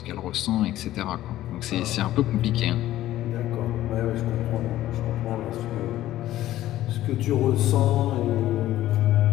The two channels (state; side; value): quieter; right; 14.2 dB